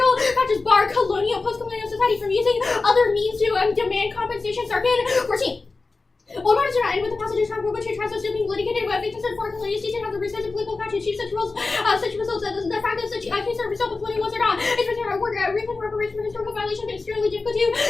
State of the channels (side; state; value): right; quieter; 3.8 dB